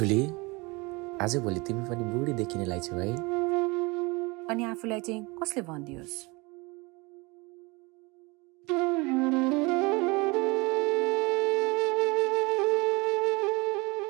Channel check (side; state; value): left; quieter; 26.0 dB